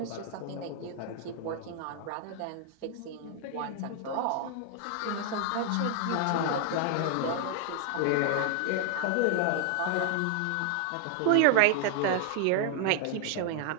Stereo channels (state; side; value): different; both; correlation 0.00